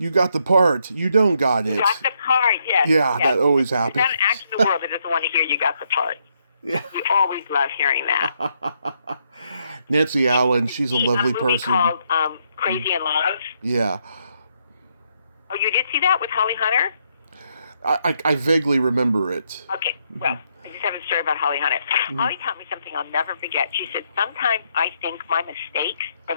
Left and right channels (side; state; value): both; inverted; correlation -0.76